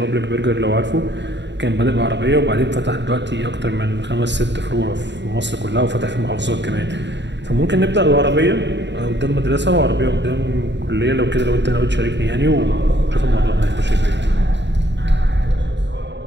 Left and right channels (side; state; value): left; late; 0.52 ms